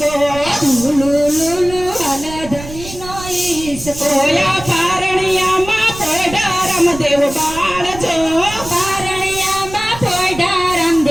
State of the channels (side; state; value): right; noise; rumble, 13 dB below the sound